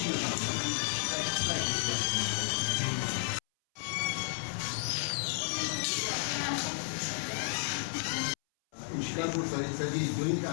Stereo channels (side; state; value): right; silent; 56 dB below the other